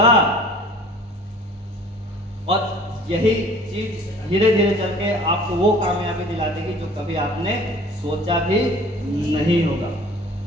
और यही चीज धीरे धीरे चल के आपको वो कामयाबी दिला देगी जो कभी आपने सोचा भी नहीं होगा।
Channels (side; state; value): both; normal; correlation 0.48